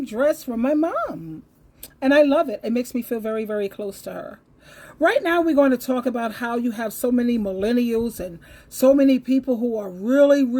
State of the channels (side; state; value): both; identical; correlation 1.00